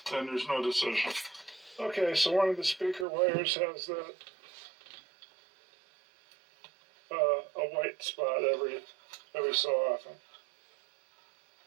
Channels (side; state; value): left; drops out; at 3.1 s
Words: then there's no decision. Okay, so one of the speaker wires has that a white spot every so often.